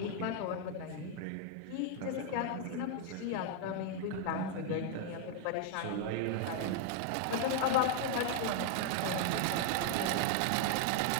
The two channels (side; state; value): both; different; correlation 0.00